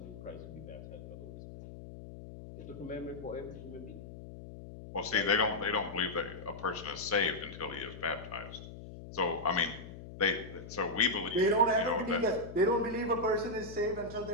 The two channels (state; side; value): noise; left; hum, 13 dB below the sound